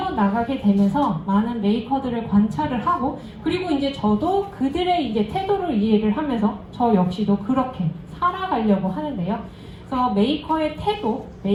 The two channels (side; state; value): both; identical; correlation 1.00